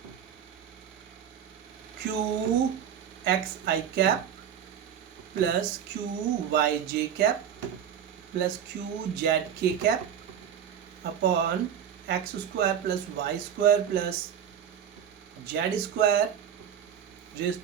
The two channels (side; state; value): left; quieter; 8.9 dB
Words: q xi cap plus q yj cap plus q zk cap upon x square plus y square plus z square raised